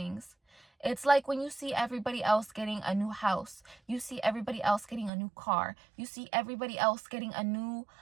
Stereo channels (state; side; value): drops out; left; at 5.1 s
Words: It's like when you see everybody else getting a new house. You see everybody else getting a new car. You see everybody else getting a new,